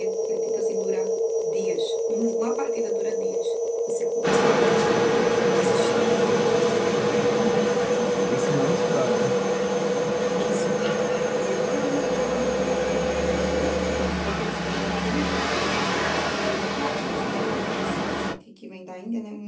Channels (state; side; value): identical; both; correlation 1.00